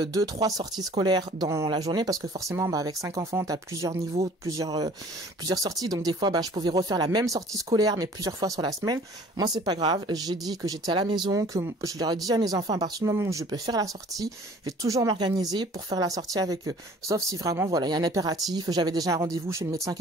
2-3 sorties scolaires dans la journée, parce que forcément, avec 5 enfants, t'as plusieurs niveaux, plusieurs sorties, donc des fois, je pouvais refaire la même sortie scolaire, mais plusieurs fois sur la semaine. Moi, c'est pas grave. J'ai dit que j'étais à la maison, que je leur ai dit à mes enfants, à partir du moment où je peux faire la sortie, je vais toujours m'organiser pour faire la sortie avec eux. Sauf si vraiment, voilà, il y a un impératif. J'avais déjà un rendez-vous chez le médecin qui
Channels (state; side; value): normal; both; correlation 0.50